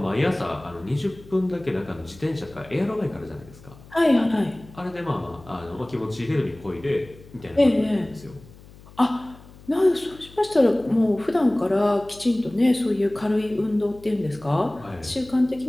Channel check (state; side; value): noise; left; hum, 21 dB below the sound